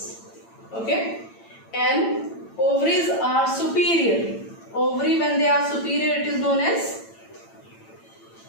Okay, and ovaries are superior. Ovary, when they are superior, it is known as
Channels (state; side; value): late; right; 8.9 ms